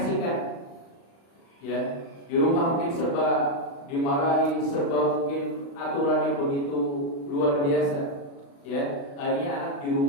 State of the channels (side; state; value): right; late; 36 ms